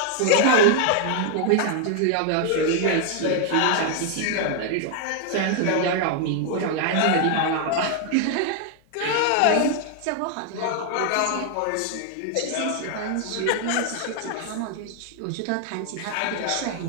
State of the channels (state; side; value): different; both; correlation 0.00